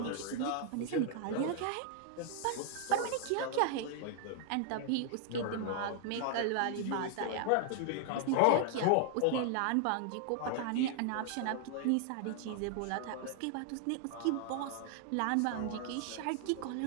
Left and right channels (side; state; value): both; different; correlation 0.00